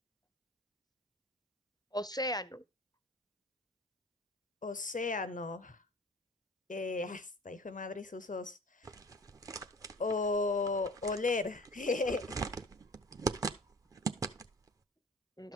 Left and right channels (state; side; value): normal; both; correlation 0.44